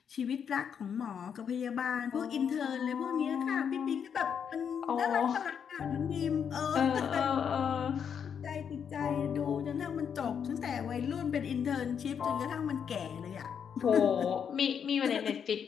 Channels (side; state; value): right; quieter; 7.5 dB